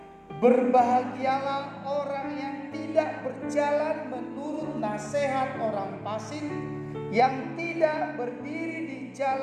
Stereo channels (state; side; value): identical; both; correlation 1.00